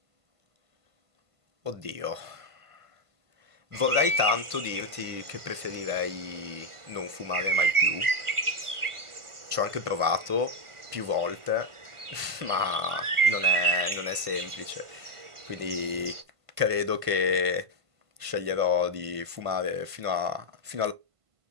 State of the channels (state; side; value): late; left; 1.5 ms